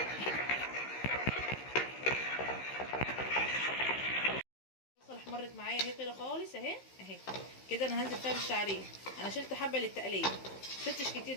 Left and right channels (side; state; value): right; late; 15 ms